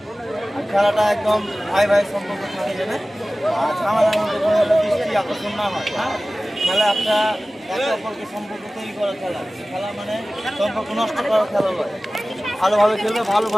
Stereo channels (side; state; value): both; normal; correlation 0.97